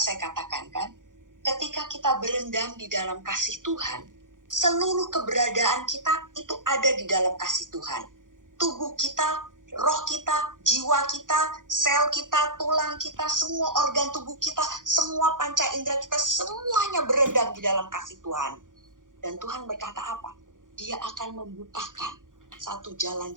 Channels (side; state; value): left; late; 0.88 ms